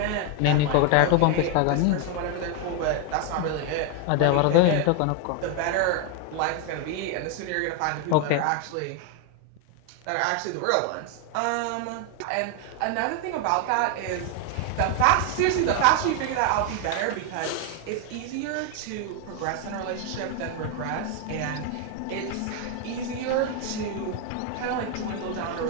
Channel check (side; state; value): both; different; correlation 0.01